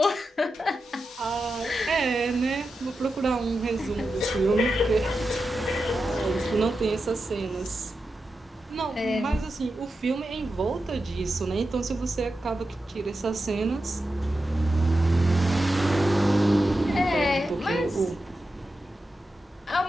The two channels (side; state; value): both; normal; correlation 0.90